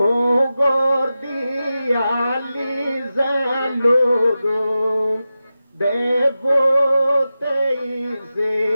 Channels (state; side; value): inverted; both; correlation -0.93